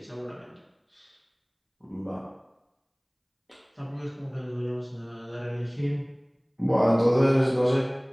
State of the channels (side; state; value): both; identical; correlation 1.00